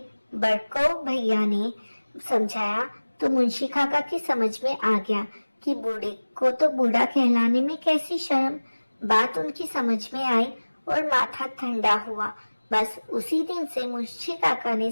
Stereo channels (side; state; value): both; inverted; correlation -1.00